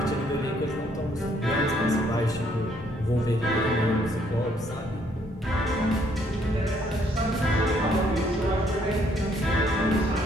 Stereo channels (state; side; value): normal; both; correlation 0.67